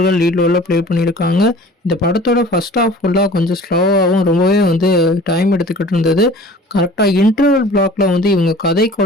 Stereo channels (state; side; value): normal; both; correlation 0.45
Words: லீட் ரோலில் ப்ளே பண்ணியிருக்காங்க. இந்த படத்தோட ஃபர்ஸ்ட் ஹாஃப் ஃபுல்லாக கொஞ்சம் ஸ்லோவாகவும் ரொம்பவே வந்து டைம் எடுத்துக்கிட்டு இருந்தது. கரெக்டாக இன்டர்வல் பிளாக்ல வந்து இவங்க கதை